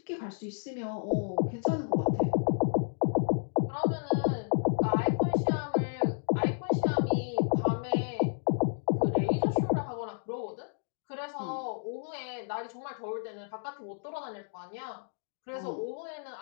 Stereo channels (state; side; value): silent; right; digital silence